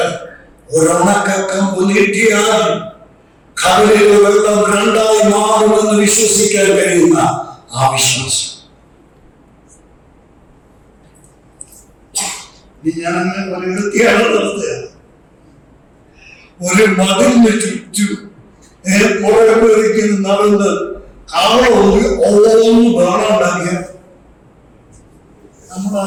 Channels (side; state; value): both; identical; correlation 1.00